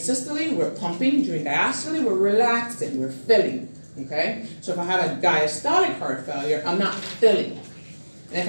we're pumping, during diastole, we're relaxing, we're filling, okay? So if I have a diastolic heart failure, I'm not filling. And if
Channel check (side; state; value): both; inverted; correlation -1.00